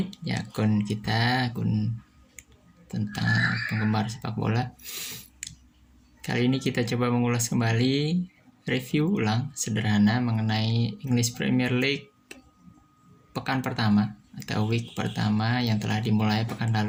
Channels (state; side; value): identical; both; correlation 1.00